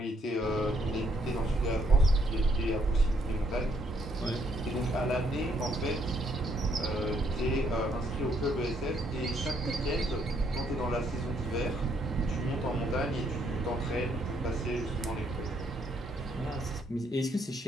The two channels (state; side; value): normal; both; correlation 0.70